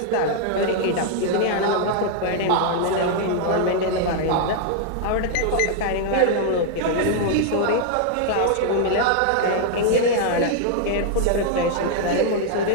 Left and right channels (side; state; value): both; different; correlation -0.01